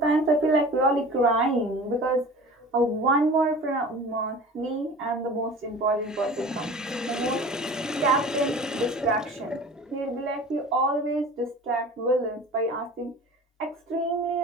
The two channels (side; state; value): both; normal; correlation 0.40